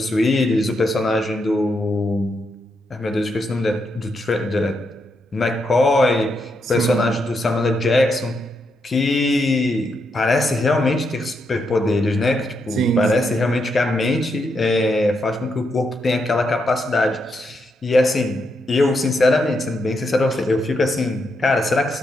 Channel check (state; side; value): normal; both; correlation 0.81